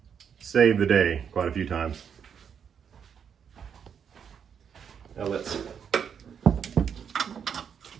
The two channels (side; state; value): left; quieter; 7.5 dB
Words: save the day quite a few times. Now let's